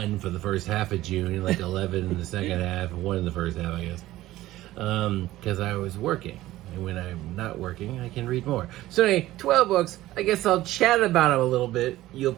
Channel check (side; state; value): left; quieter; 15.8 dB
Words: for the first half of June, and like 11 in the second half, and one in the first half, I guess. Because I was working. And when I'm not working, I can read more. So anyway, 12 books. I guess I'll chat about them a little bit. You'll